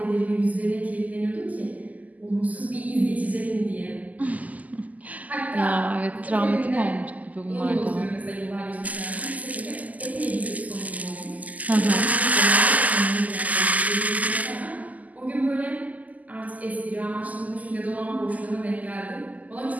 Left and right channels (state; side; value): late; left; 0.077 ms